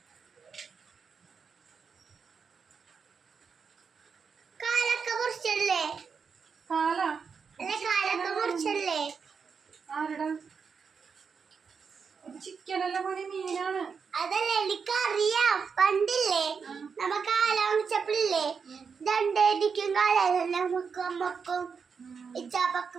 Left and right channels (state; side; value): quieter; left; 5.9 dB